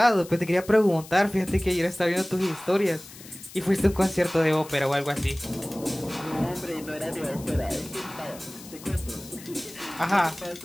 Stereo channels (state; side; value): noise; left; hiss, 17 dB below the sound